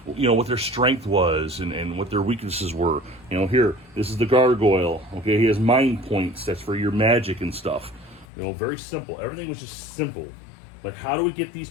what their strength was and what their weaknesses were. Here, this is the gargoyle. Okay, he has mind points. That's for your magic and stuff. Very simple. Everything was just simple. Like, how do we get these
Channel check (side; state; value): right; drops out; at 8.2 s